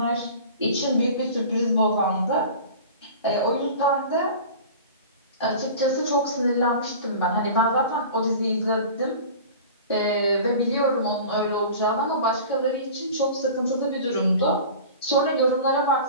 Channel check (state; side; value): inverted; both; correlation -0.38